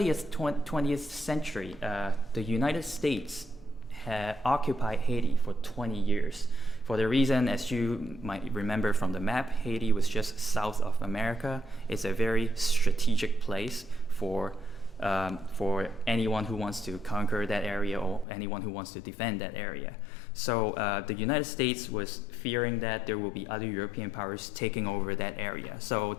20th century, the United States had occupied Haiti for 20 years. For the reason, as you might remember from the map, Haiti was just south of America. It's a very strategic place for anyone who wants to conquer that area or anyone who wants to defend that area. So the United States was fearing that there will be other European powers taking over that area. So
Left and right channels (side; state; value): right; drops out; at 18.2 s